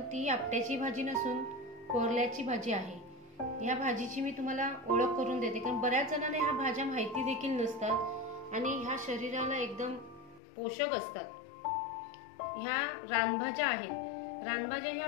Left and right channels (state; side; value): drops out; right; at 10.4 s